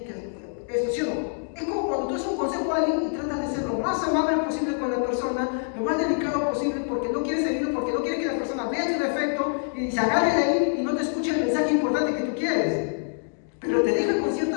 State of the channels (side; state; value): right; silent; digital silence